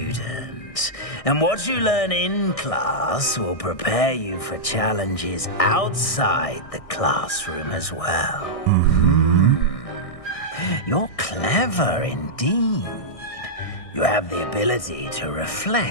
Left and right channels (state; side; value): late; right; 1.6 ms